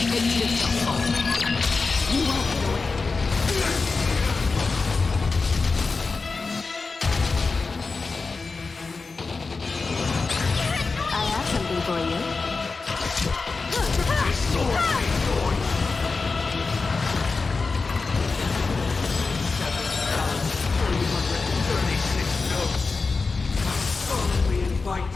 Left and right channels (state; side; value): quieter; right; 4.2 dB